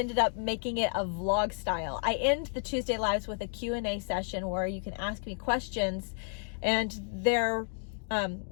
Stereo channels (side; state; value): right; silent; 57 dB below the other